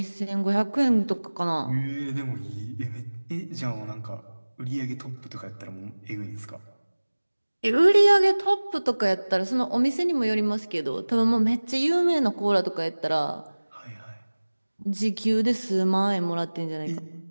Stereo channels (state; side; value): inverted; both; correlation -1.00